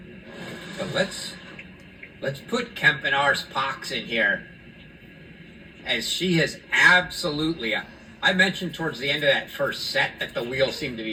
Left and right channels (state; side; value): identical; both; correlation 1.00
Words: But let's put Kempenar's Pox in here, as she has absolutely. I mentioned towards the end of that first set that the wheels seemed to